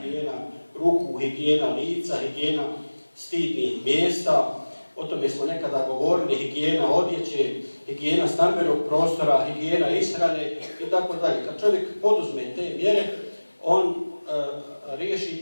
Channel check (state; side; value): inverted; both; correlation -1.00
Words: ruku, higijena lica, higijena stidnih mjesta. O tome smo nekada govorili, higijena odjeće, higijena stambenog prostora, higijena ishrane i tako dalje. Kad čovjek poduzme te mjere, on